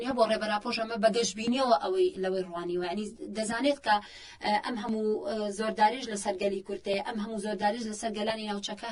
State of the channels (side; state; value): both; identical; correlation 1.00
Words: هەیە بۆ ڕێبەراپۆش ئەمە بەگەشتبینیەوە ئەوەی لەوەی ڕوانیوە ینی دەزانێت کە ئەم هەموو زۆرداریش لەسەر گەلی کورتەیە ئەم هەموو زۆرداریش لەسەر گەلانی ناوچەکە